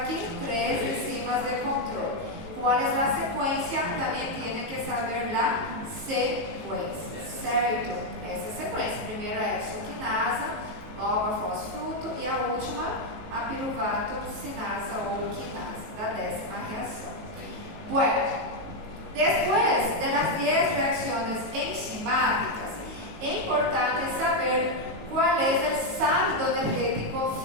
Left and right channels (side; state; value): left; late; 19 ms